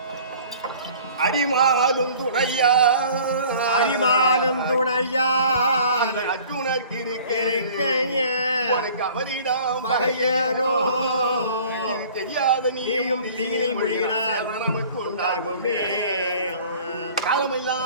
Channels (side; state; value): both; inverted; correlation -0.49